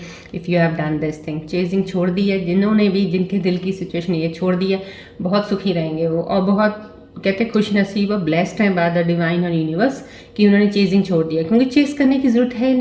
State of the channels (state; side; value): identical; both; correlation 1.00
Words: if you have done this thing. Chasing छोड़ दी है, जिन्होंने भी, जिनके दिल की सिचुएशन ये छोड़ दी है, बहुत सुखी रहेंगे वो, और बहुत कहते खुश नसीब और ब्लेस्ड हैं बाय द डिवाइन और यूनिवर्स कि उन्होंने चेजिंग छोड़ दिया, क्योंकि चेज करने की ज़रूरत है